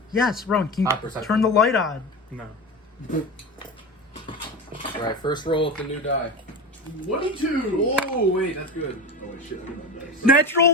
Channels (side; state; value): both; normal; correlation 0.25